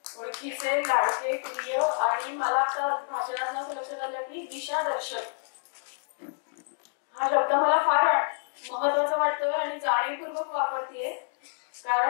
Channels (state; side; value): silent; right; digital silence